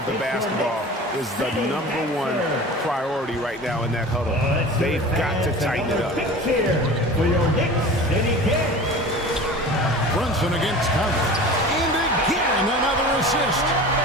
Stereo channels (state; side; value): normal; both; correlation 0.37